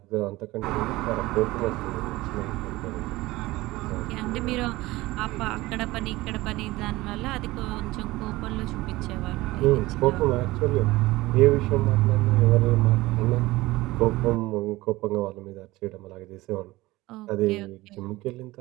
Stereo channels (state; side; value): quieter; left; 19.3 dB